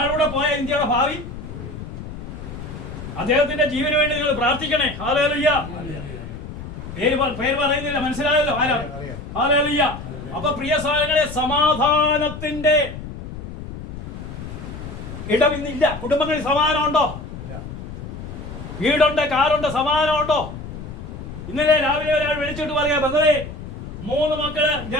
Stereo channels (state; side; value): noise; left; rumble, 10 dB below the sound